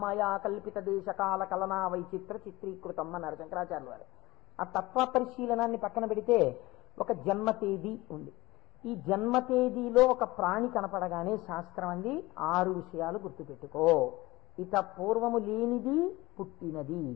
మాయా కల్పిత దేశకాల కలనా వైచిత్ర చిత్రీకృతం అన్నారు శంకరాచార్యుల వారు. ఆ తత్వ పరిశీలనాన్ని పక్కన పెడితే ఒక జన్మ తేదీ ఉంది. ఈ జన్మ తేదీలో ఒక ప్రాణి కనపడగానే శాస్త్రం అంది 6 విషయాలు గుర్తుపెట్టుకో. ఇత పూర్వము లేనిది పుట్టినది.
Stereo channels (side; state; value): right; quieter; 20.4 dB